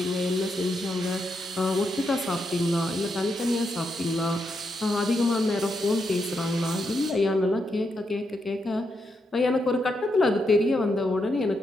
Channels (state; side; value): normal; both; correlation 0.82